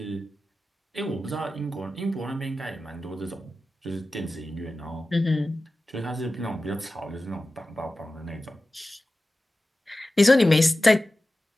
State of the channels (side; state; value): both; normal; correlation 0.95